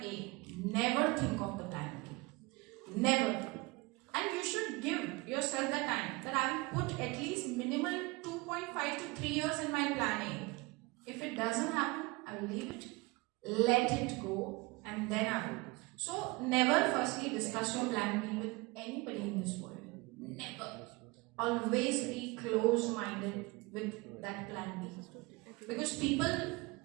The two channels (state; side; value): quieter; left; 24.6 dB